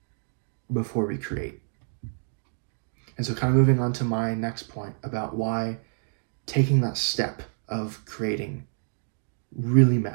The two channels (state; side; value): silent; left; digital silence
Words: before we create. And so kind of moving on to my next point about why taking that step of creating really